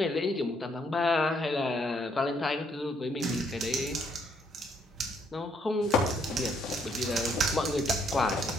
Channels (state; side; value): normal; both; correlation 0.70